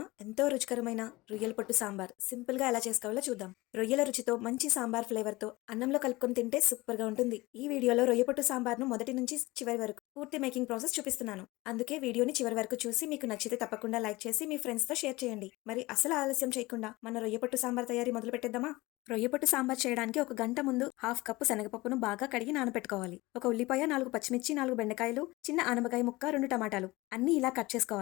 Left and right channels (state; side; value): quieter; right; 21.0 dB